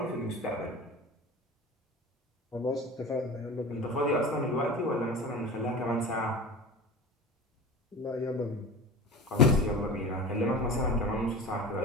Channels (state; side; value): normal; both; correlation 0.33